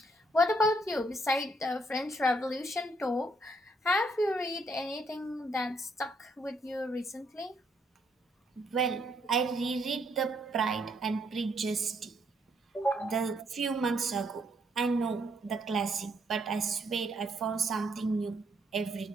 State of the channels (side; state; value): both; normal; correlation 0.71